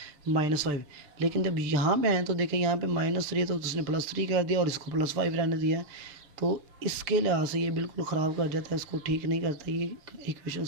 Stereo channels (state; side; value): late; left; 6.6 ms